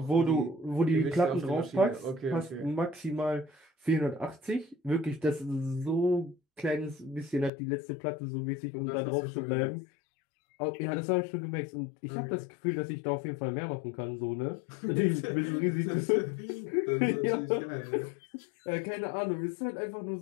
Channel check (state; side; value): drops out; right; at 7.5 s